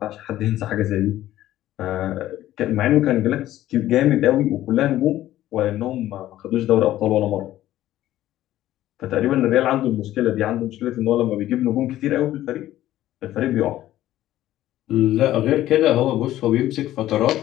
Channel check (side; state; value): right; quieter; 14.0 dB